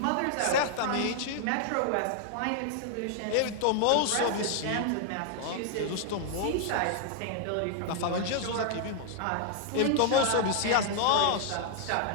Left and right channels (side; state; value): both; different; correlation 0.00